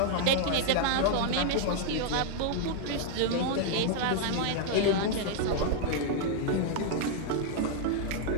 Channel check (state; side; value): different; both; correlation -0.01